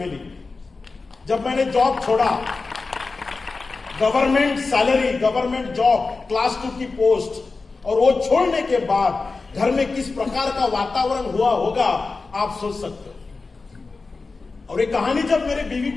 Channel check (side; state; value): right; quieter; 4.0 dB